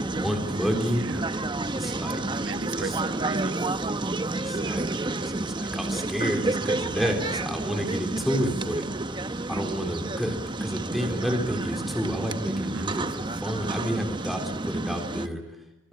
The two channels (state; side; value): normal; both; correlation 0.69